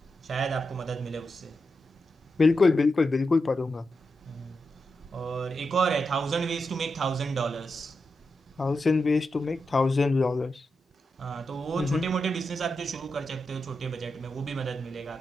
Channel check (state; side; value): normal; both; correlation 0.87